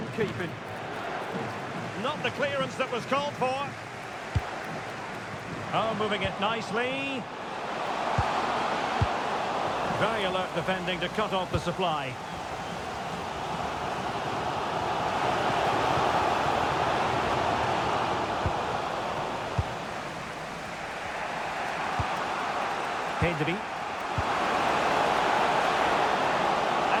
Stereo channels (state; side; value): identical; both; correlation 1.00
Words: keeping. Not the clearance that was called for. Oh, moving it nicely. Very alert defending to cut off the supply. Pedri.